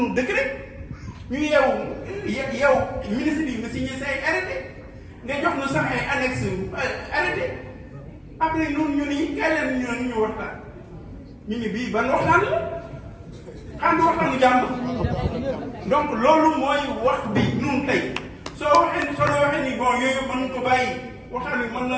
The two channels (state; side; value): identical; both; correlation 1.00